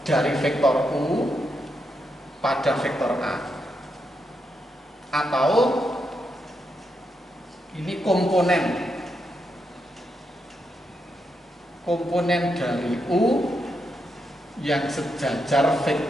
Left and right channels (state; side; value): normal; both; correlation 0.82